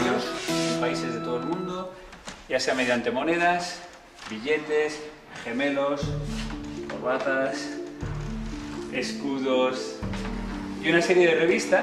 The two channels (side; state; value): both; identical; correlation 1.00